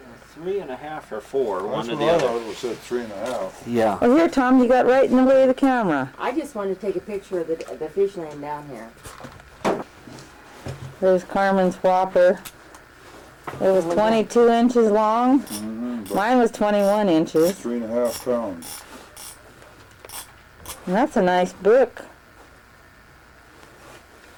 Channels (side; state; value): both; identical; correlation 1.00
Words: 3.5 or 4, That's one or what the I other. thought it said 3.5. Yeah. Well, here, Tom, you got right in the way of the camera. I just wanted to take a picture of the fish laying down here. There's Carmen's whopper. It was 22 inches long. Mm-hmm. Mine was 21 inches. 3.5 pounds. And that's a nice brook.